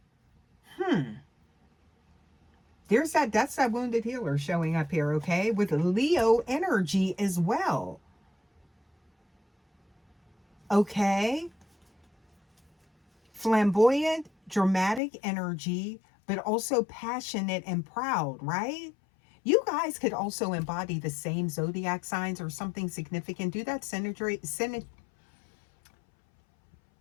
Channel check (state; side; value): drops out; right; at 15.0 s